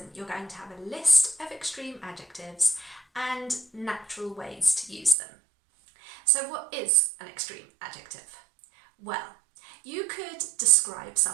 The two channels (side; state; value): left; drops out; at 5.2 s